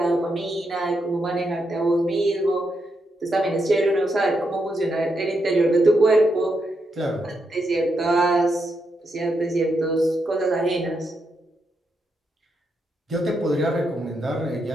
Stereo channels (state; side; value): normal; both; correlation 0.82